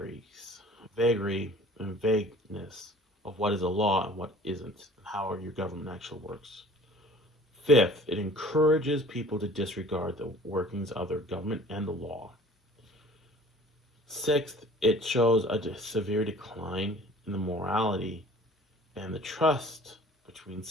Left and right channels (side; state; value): both; normal; correlation 0.48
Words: and vagueness of what is a law and what isn't, and how your government actually works. Fifth, it encourages people to disregard the workings of their government and the law. Sixth, it shows a severe decline in the morality and the trust between